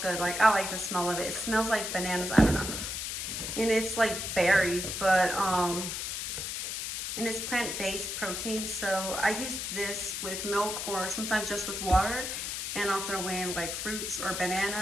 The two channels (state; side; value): noise; left; hiss, 4 dB below the sound